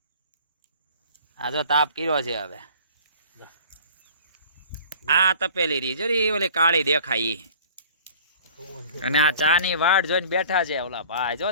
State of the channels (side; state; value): both; inverted; correlation -0.47